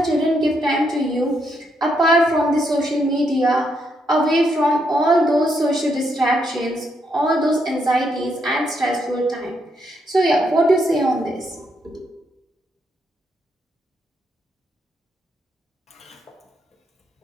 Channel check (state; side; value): normal; both; correlation 0.77